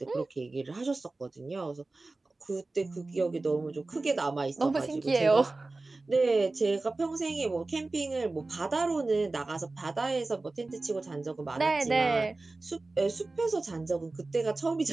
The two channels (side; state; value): left; quieter; 3.3 dB